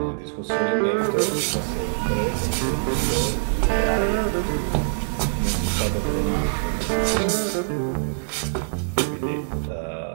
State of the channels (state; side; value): silent; left; digital silence